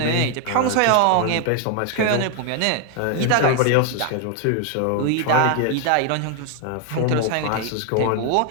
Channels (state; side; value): different; both; correlation 0.00